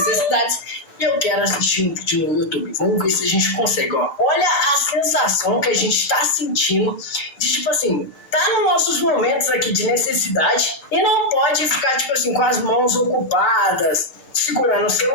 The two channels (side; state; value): right; late; 6.7 ms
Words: E eu quero assistir um vídeo no YouTube. Vamos ver se a gente consegue, ó. Olha a sensação que a gente tá sentindo de, tipo assim, tá nos nossos momentos aqui de necessidade e não pode ficar, tipo assim, com as mãos ocupadas, segurando o